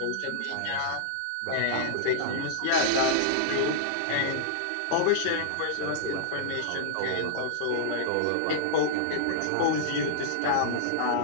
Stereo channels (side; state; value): both; different; correlation -0.01